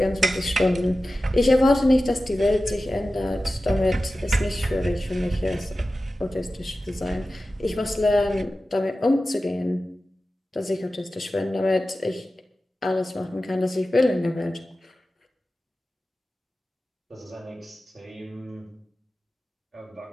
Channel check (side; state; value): both; normal; correlation 0.94